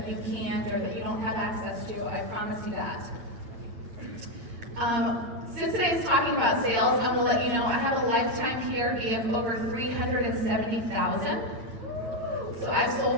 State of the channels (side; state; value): left; late; 8.5 ms